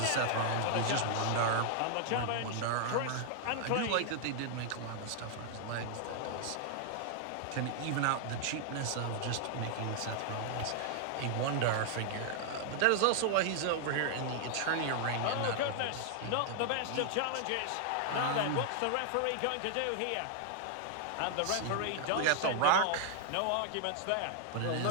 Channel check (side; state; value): both; different; correlation 0.00